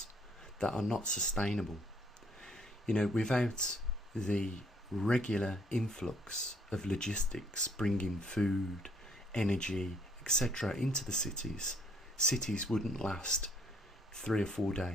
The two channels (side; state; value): both; normal; correlation 0.65